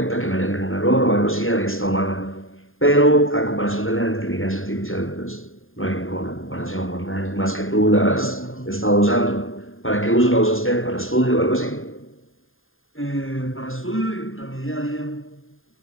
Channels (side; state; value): right; late; 0.59 ms